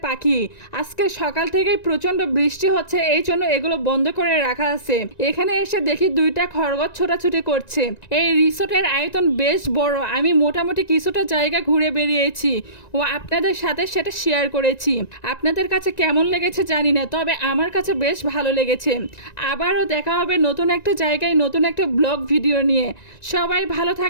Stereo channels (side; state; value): right; late; 1.9 ms